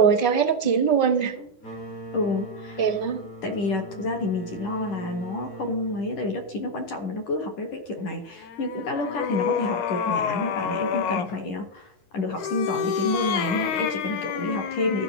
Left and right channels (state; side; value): late; right; 9.8 ms